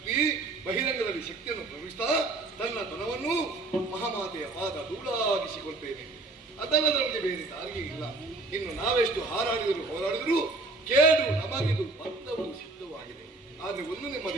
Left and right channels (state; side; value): quieter; left; 3.1 dB